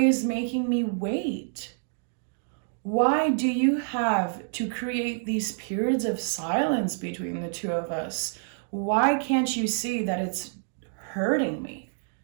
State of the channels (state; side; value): silent; left; digital silence